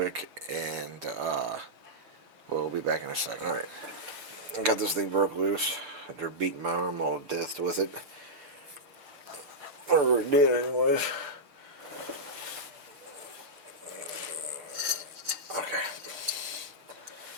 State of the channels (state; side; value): late; left; 6.8 ms